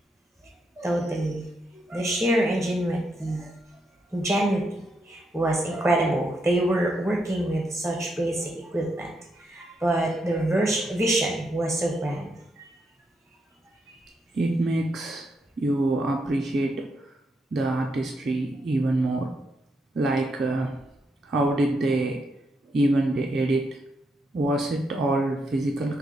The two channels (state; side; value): normal; both; correlation 0.80